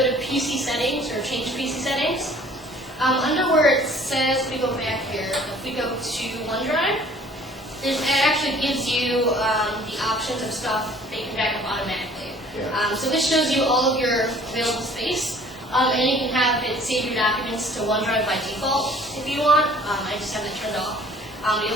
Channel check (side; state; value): both; normal; correlation 0.53